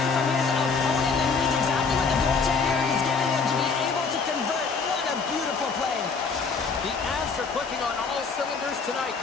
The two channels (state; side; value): quieter; right; 5.0 dB